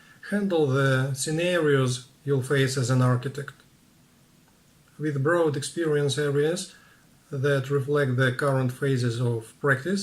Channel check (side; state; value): both; identical; correlation 1.00